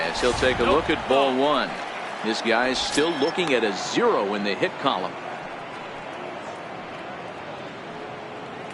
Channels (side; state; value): both; identical; correlation 1.00